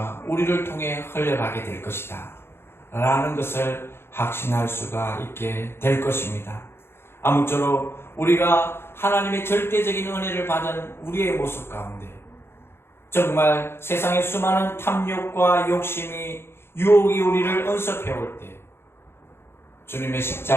우리를 통해 흘러가게 될 것이다 라는 것을 확신할 수가 있게 될 것입니다. 아무쪼록 우리가 하나님의 절대적인 은혜를 받은 우리의 모습 가운데 정말 세상의 수많은 탐욕과 욕심이 유혹이 우리를 언섭해올 때 주님의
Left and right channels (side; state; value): right; late; 0.12 ms